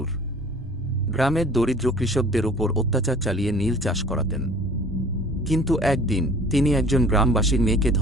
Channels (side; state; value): both; normal; correlation 0.48